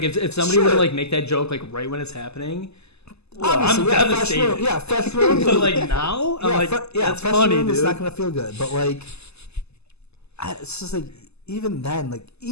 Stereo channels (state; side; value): late; right; 0.79 ms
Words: if somebody were to like make that joke like right when it's happening, I'm devastated. Fresh room. But like now, I'm like, that's fresh funny, room dude. It's not gonna feel good. But like, it's just like even then,